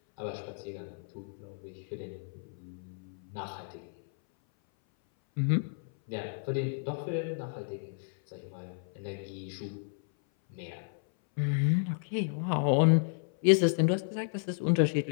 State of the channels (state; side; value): silent; right; 56 dB below the other